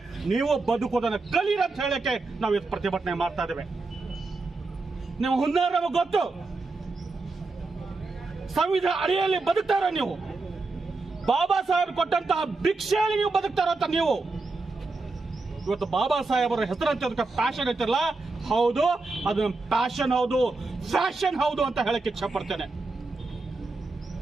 ನೀವು ಬದುಕೋದನ್ನ ಕಲೀರಿ ಅಂತ ಹೇಳಕ್ಕೆ ನಾವು ಇವತ್ತು ಪ್ರತಿಭಟನೆ ಮಾಡ್ತಾ ಇದ್ದೇವೆ. ನಿಮ್ಮ ಹುನ್ನಾರ ನಮಗೆ ಗೊತ್ತು. ಸಂವಿಧಾನ ಅಡಿಯಲ್ಲಿ ಬದುಕ್ತಾರ ನೀವು, ಬಾಬಾ ಸಾಹೇಬ್ ಕೊಟ್ಟಂತಹ ಭಿಕ್ಷೆಯಲ್ಲಿ ನೀವು ಬದುಕ್ತಾರ ಅಂತ ನೀವು. ಇವತ್ತು ಬಾಬಾ ಸಾಹೇಬರ ಹೆಸರಂತೆ ಅದಕ್ಕೆ ಪ್ಯಾಷನ್ ಐತಿರಲ್ಲ, ಹೌದು, ಅದು ಪ್ಯಾಷನ್ ಹೌದು, ಫ್ಯಾಷನ್ ಹೌದು ಅಂತ ಹೇಳಕ್ಕೆ ಇಚ್ಛೆ ಪಡ್ತೇನೆ.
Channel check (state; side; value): quieter; left; 3.6 dB